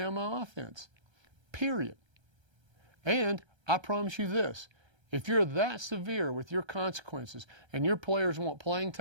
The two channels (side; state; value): left; late; 1.3 ms